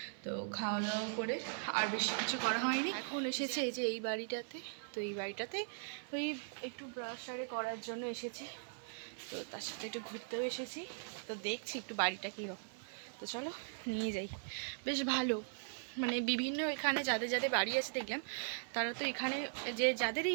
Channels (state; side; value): silent; left; 51 dB below the other